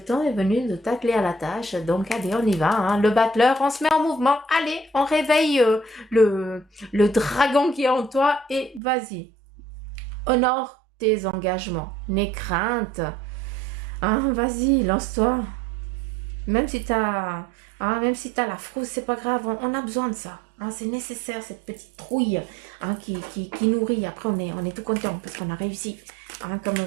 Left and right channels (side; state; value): left; drops out; at 8.8 s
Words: est venu de t'atteler à la tâche. Donc allez, on y va, hein. Le battleur, on se met en mouvement. Allez, on réveille le dragon qui est en toi et vas-y. Honore tes engagements, n'aie crainte. Hein, vas-y, lance-toi. Même si t'as la frousse, c'est pas grave, on a besoin de ça. Hein, c'est nécessaire, cette petite trouille, hein, qui nourrit. Après, on est tout content parce qu'on a réussi. Hein,